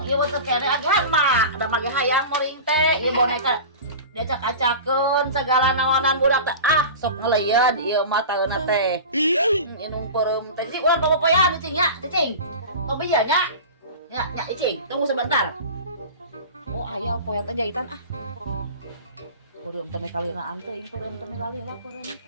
ieu teh kene agan mah da mage hayang moring teh ieu boneka diacak-acakeun segala nawanan budak teh sok ngeleud ieu mah taeuna teh. Inung peureum teh cing urang popoyan cing nya cing. Tong bieu nya. Ya cing, tunggu sebentar. Oh aya poyan teh jahitan Peureum teh kalinaan teh peureum teh lalila peureum.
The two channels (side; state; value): both; inverted; correlation -0.33